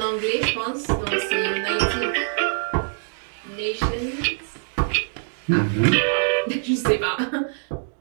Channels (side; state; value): left; silent; digital silence